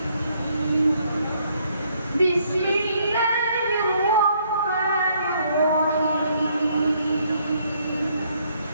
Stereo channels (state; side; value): inverted; both; correlation -0.69